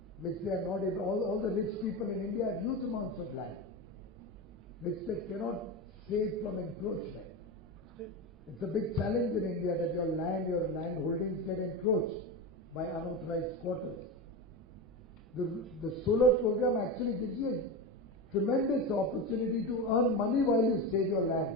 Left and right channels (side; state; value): both; normal; correlation 0.20